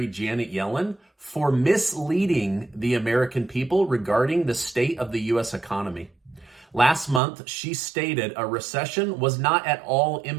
Janet Yellen for misleading the American people regarding the state of the U.S. economy. Last month, she stated a recession was not at all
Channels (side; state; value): left; drops out; at 7.2 s